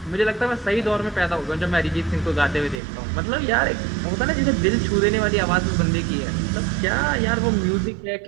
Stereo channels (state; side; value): drops out; left; at 2.8 s